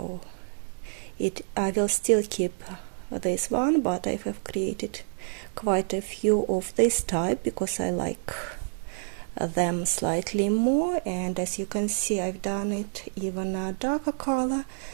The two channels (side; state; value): left; silent; digital silence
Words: I will still keep this one, but I have created quite a few of this type because I like them slightly more, and as you can see I've done it even a darker color.